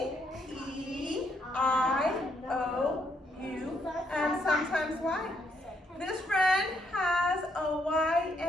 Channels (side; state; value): both; normal; correlation 0.74